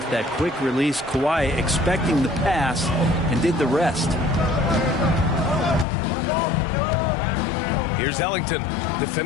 that quick release. Kawhi expecting the pass and did the rest. Here's Ellington,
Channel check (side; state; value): right; drops out; at 5.9 s